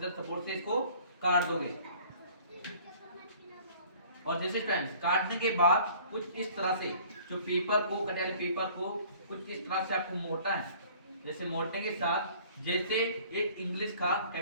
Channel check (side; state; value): both; inverted; correlation -0.52